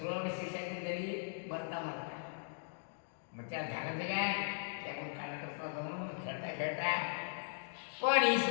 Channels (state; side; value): silent; right; digital silence